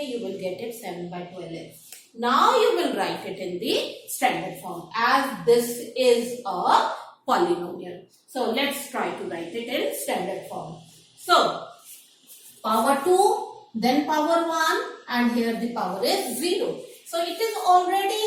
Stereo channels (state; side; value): identical; both; correlation 1.00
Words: you will get it 7 by 12x. Now you will write it in the standard form as this is a polynomial. So let's try to write it in standard form. So power 2, then power 1, and here the power is 0. So it is